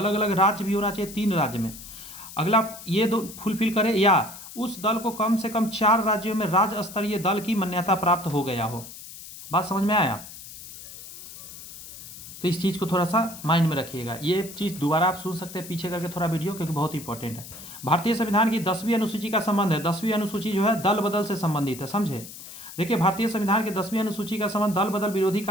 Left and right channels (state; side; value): noise; left; hiss, 14 dB below the sound